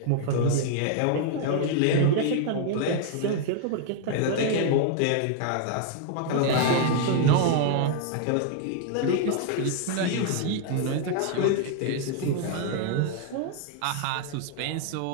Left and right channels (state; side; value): different; both; correlation 0.00